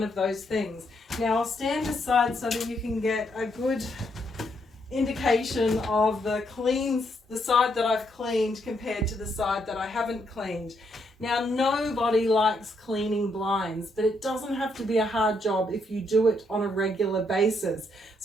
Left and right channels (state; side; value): normal; both; correlation 0.76